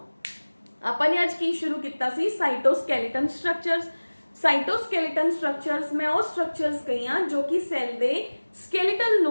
आपने आज की शुरू किया सी साइटोस्केलेटन स्ट्रक्चर्स। साइटोस्केलेटन स्ट्रक्चर्स मैं वो स्ट्रक्चर्स कही हाँ जो कि सैल दे स्केलेटल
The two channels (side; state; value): both; inverted; correlation -1.00